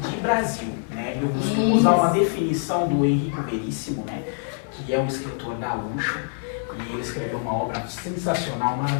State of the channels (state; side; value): silent; right; 57 dB below the other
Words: Brasil. Né? Eu costumo usar uma definição do Henrico Veríssimo, né, que é um escritor gaúcho, e ele escreveu uma obra sensacional,